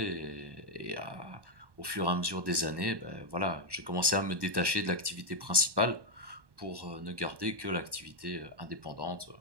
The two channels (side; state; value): left; late; 1.1 ms